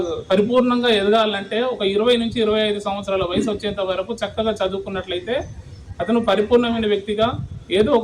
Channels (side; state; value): both; identical; correlation 1.00